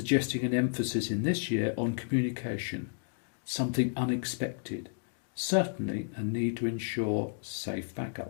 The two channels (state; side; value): silent; right; digital silence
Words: an emphasis in this year on communication, something unexpected, certainly a need to ensure safe